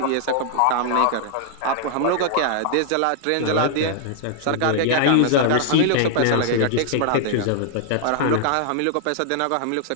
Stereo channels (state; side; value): different; both; correlation -0.01